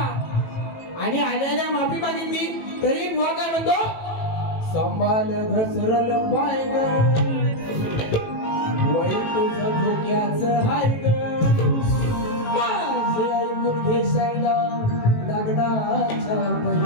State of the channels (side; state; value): right; late; 18 ms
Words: आणि आल्याला माफी मागितली तरी बुवा काय म्हणतो संभाल घसरल पाय ग वय तुझं धोक्याचं हाय ग माझे ऐकून घेशायला लग्नाच्या